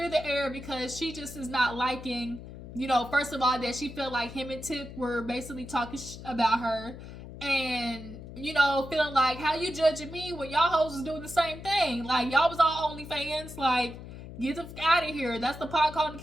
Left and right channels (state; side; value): noise; left; hum, 13 dB below the sound